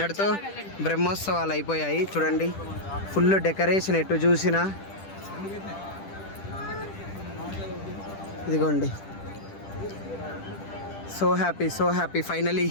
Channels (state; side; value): late; right; 10 ms